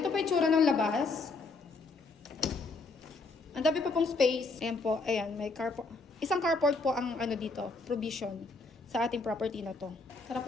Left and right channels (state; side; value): quieter; right; 3.7 dB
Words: po itsura ng labas. Ang dami pa pong space. Ayan po, ayan, may carport. Isang carport po ang ano dito, provision sa ating property na to. Tara